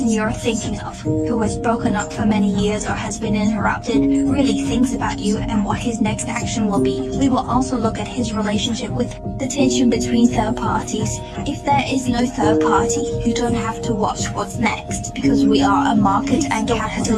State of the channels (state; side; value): identical; both; correlation 1.00